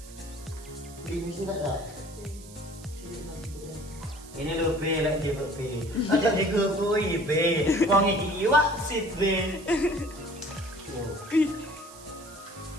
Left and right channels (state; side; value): noise; right; hiss, 19 dB below the sound